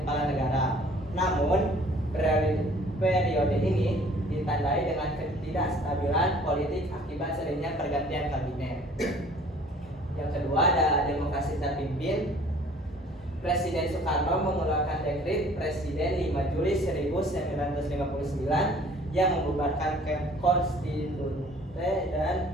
kepala negara. Namun periode ini ditandai dengan ketidakstabilan politik akibat seringnya pergantian kabinet. Yang kedua ada demokrasi terpimpin. Presiden Soekarno mengeluarkan dekret Presiden 5 Juli 1959 yang membubarkan konstitusi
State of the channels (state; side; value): normal; both; correlation 0.53